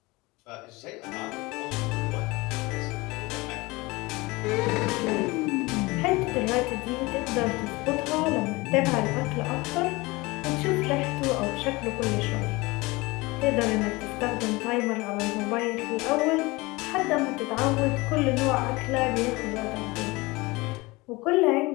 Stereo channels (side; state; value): right; quieter; 22.9 dB